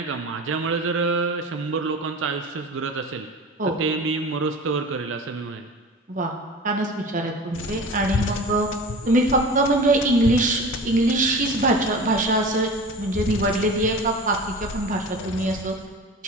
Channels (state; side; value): normal; both; correlation 0.35